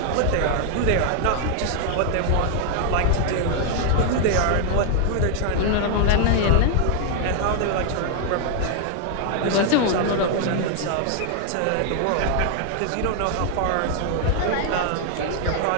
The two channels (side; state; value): both; different; correlation 0.00